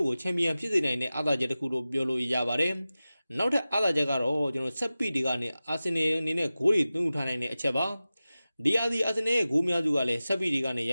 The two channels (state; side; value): inverted; both; correlation -0.95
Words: ့ကိုချန်ပီယံဖြစ်စေနိုင်တဲ့အားသာချက်တစ်ခုလို့ပြောလို့ရပါတယ်နောက်ထပ်အားသာချက်ကတော့ကျွန်တော်ဆက်ပီတွေကနေအာဆင်နယ်အနေနဲ့ဂိုးတွေသွင်းထားနိုင်တဲ့အချက်ပါဒီယာစီအာဆင်နယ်ရဲ့ဂိုးများစုကလည်းဆက်ပီတွေကနေရ